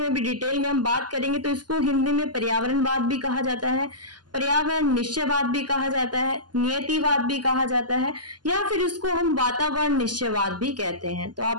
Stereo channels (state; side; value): late; left; 0.70 ms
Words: भी डिटेल में हम बात करेंगे। तो इसको हिंदी में पर्यावरणवाद भी कहा जाता है, पर्यावरण निश्चयवाद भी कहा जाता है, नियतिवाद भी कहा जाता है, या फिर इसको हम वातावरण निश्चयवाद भी कहते हैं। तो